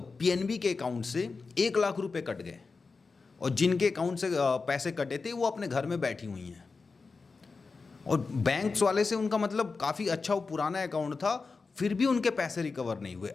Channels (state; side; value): quieter; right; 4.4 dB